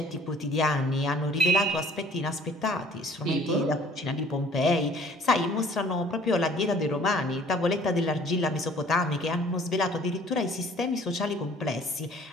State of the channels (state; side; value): normal; both; correlation 0.54